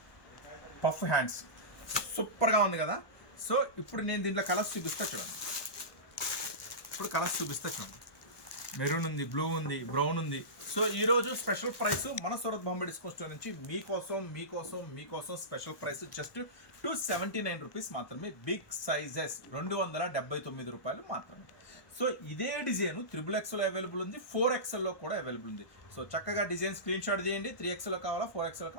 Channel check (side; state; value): right; late; 1.2 ms